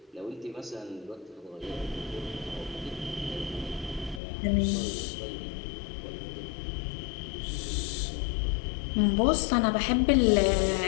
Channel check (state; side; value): drops out; right; at 4.2 s